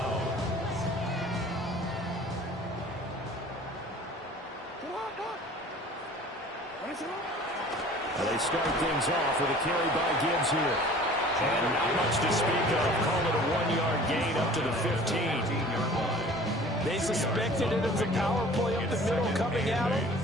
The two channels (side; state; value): both; normal; correlation 0.47